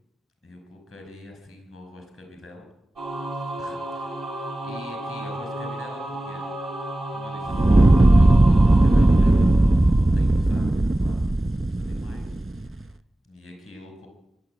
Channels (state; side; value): normal; both; correlation 0.96